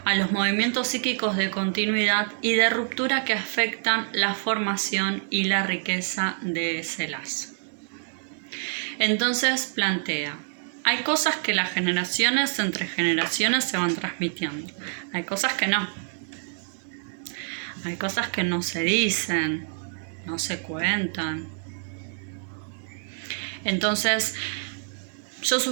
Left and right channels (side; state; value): left; silent; 59 dB below the other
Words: a los movimientos psíquicos de continuidad y de ruptura que afectan la formación y la riqueza de ese lazo. Entonces plantea, hay cosas que las generaciones entre generaciones se van transmitiendo, hay cosas que no. Hay cosas que no se dicen, no se cuentan. Entonces, yo